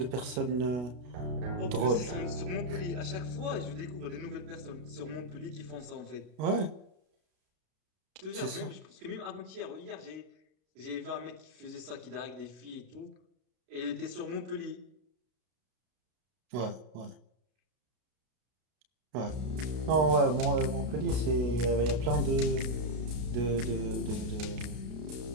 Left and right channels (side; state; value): left; late; 33 ms